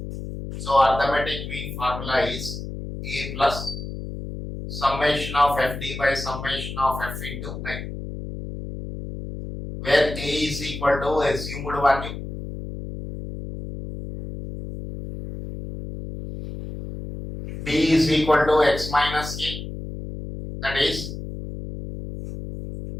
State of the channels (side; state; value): left; noise; hum, 8 dB below the sound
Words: So arithmetic mean formula is A plus summation of FD by summation of F into I, where A is equal to assumed value, B is equal to X minus A, that is